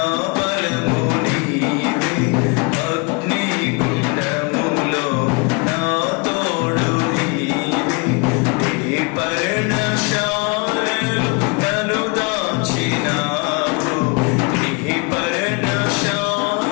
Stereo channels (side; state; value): right; quieter; 31.1 dB